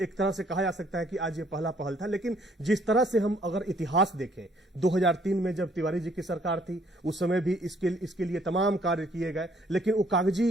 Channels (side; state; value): both; normal; correlation 0.64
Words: तरह से कहा जा सकता है कि आज ये पहला पहल था। लेकिन जिस तरह से हम अगर इतिहास देखें, 2003 में जब तिवारी जी की सरकार थी, उस समय भी इसके लिए तमाम कार्य किए गए, लेकिन वो